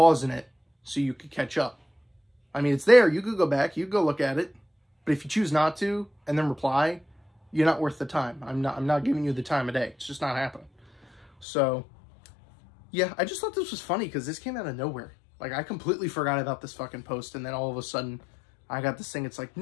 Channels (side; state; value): right; drops out; at 11.5 s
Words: it so you could catch up. I mean, it's there. You could go back. You could go look at it. But if you choose not to and then reply, you're not worth the time. I'm not giving you the time of day. It's just not happening. So, yeah, I just thought this was funny because this came out of nowhere. Like, I completely forgot about this fucking post, and then all of a sudden, I got this thing. It's like